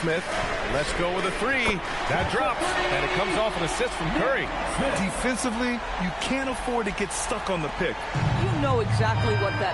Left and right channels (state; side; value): identical; both; correlation 1.00